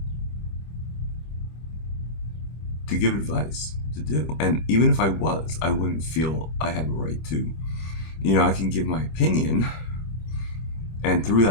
give advice to do. And even if I was, I wouldn't feel I have a right to. I can give my opinion, and through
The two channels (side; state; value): right; late; 25 ms